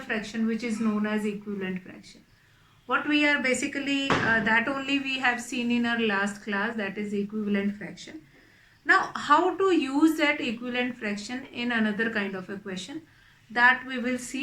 fraction which is known as equivalent fraction. What we are basically that only we have seen in our last class, that is equivalent fraction. Now how to use that equivalent fraction in another kind of a question, that we will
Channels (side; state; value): both; identical; correlation 1.00